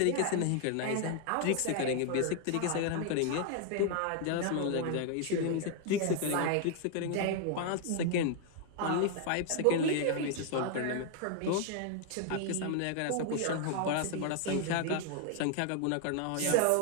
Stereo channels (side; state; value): both; different; correlation 0.00